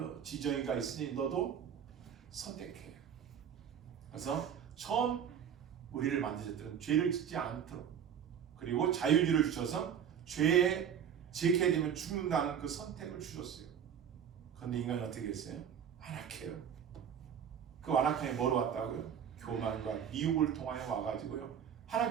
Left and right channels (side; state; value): left; quieter; 8.4 dB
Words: 지정이가 있으니 너도 선택해. 그래서 처음 우리를 만드셨던 죄를 짓지 않도록, 그리고 자유주의를 주셔서 죄에 지게 되면 죽는다는 그 선택을 주셨어요. 그런데 인간이 어떻게 했어요? 완악해요. 그 완악함이 뭐로 왔다고요? 교만과 미혹을 통하여 와가지고요,